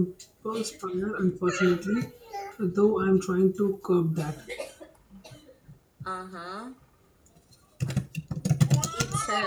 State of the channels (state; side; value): identical; both; correlation 1.00